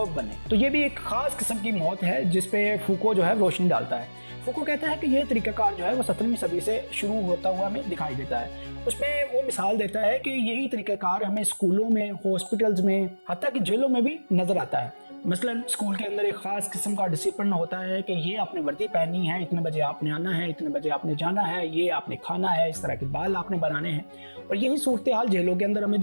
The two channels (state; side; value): inverted; both; correlation -1.00